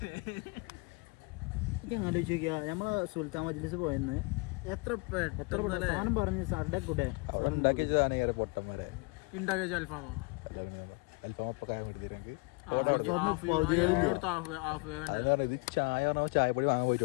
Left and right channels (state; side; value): quieter; right; 29.3 dB